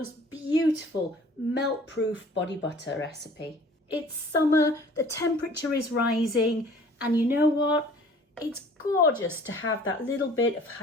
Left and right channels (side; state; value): both; normal; correlation 0.50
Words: beautiful melt-proof body butter recipe. It's summer, the temperature is rising, and you know what? It's gorgeous to have that little bit of